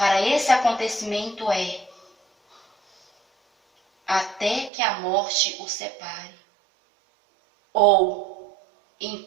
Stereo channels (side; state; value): left; drops out; at 4.7 s